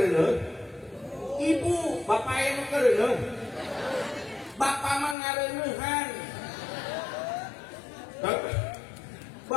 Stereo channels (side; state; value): right; drops out; at 5.2 s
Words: Ibu, bapak anu kereneuh. Bapak mah ngareneuhan.